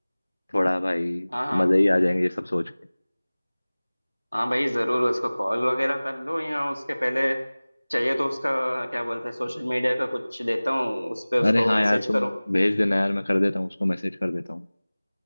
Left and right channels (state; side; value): inverted; both; correlation -1.00